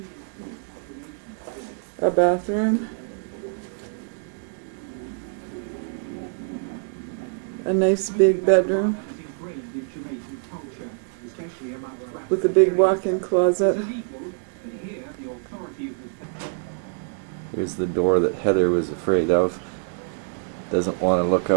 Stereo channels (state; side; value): silent; left; digital silence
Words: A bathroom. A nice big bedroom with a big walk-in closet. Here's the door that Heather was afraid of. Doesn't want to look